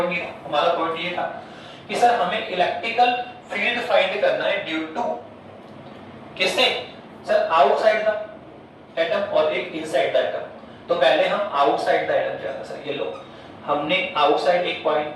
नहीं था। हमारा पॉइंट ये था कि सर हमें इलेक्ट्रिकल फील्ड फाइंड करना है ड्यू टू किससे सर? आउटसाइड द एटम और एक इनसाइड द एटम। तो पहले हम आउटसाइड द एटम जाना सर, ये लो हमने आउटसाइड एक पॉइंट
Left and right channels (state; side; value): identical; both; correlation 1.00